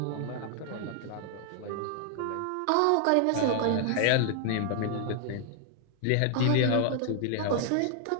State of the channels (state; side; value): different; both; correlation 0.00